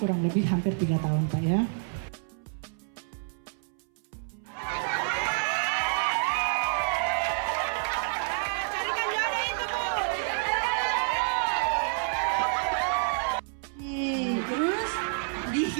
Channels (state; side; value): silent; left; 59 dB below the other